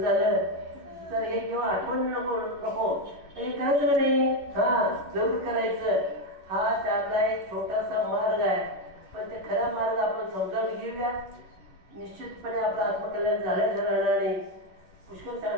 तर हे किंवा आठवण नको हे करायचं नाही. जरूर करायचं. हा त्यातला एक छोटासा मार्ग आहे. पण ते खरा मार्ग आपण समजावून घेऊया. निश्चितपणे आपलं आत्मकल्याण झाल्याचं राहणार नाही. पुष्कळ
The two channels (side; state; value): left; late; 11 ms